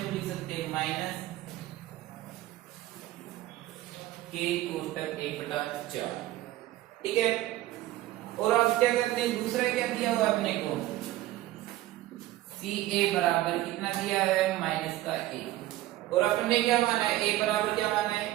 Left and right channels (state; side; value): quieter; left; 15.8 dB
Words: लिख सकते हैं, -k/1/4। ठीक है, और अब क्या करते हैं, दूसरा क्या दिया हुआ अपने को, CA बराबर कितना दिया है, -1, और अपन ने क्या माना है, A बराबर क्या माना है,